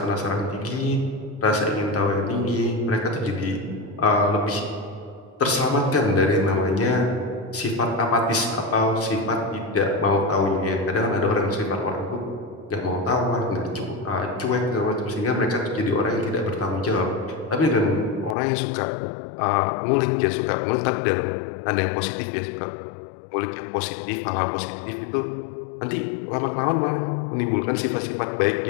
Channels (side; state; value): right; drops out; at 18.4 s